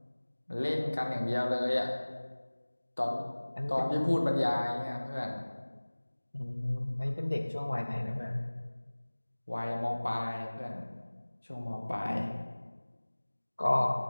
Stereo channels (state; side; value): inverted; both; correlation -1.00